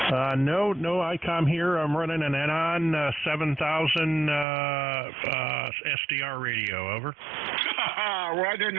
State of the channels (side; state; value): left; drops out; at 4.5 s